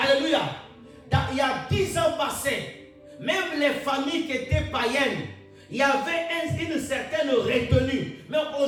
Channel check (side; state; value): both; identical; correlation 1.00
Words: Il y a 10 ans passés, même les familles qui étaient païennes, il y avait une certaine retenue. Mais